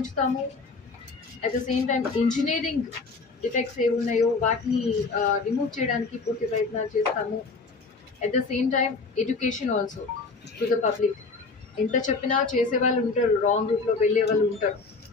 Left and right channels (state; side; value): quieter; right; 4.1 dB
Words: At the same time engineering defects ఏ ఉన్నాయో వాటిని రిమూవ్ చేయడానికి పూర్తి ప్రయత్నాలు చేస్తాము. At the same time education also to the public. ఎంత చెప్పినా చేసే వాళ్ళు ఉంటారు, రాంగ్ రూట్లో వెళ్ళే వాళ్ళు ఉంటారు.